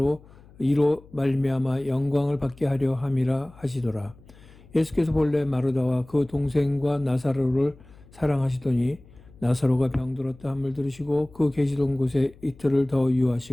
이로 말미암아 영광을 받게 하려 함이라 하시더라. 예수께서 본래 마르다와 그 동생과 나사로를 사랑하시더니 나사로가 병들었다 함을 들으시고 그 계시던 곳에 이틀을 더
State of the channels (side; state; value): left; noise; hum, 24 dB below the sound